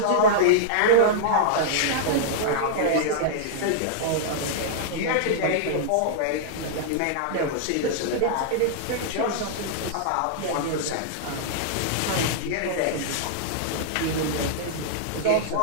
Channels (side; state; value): both; different; correlation -0.02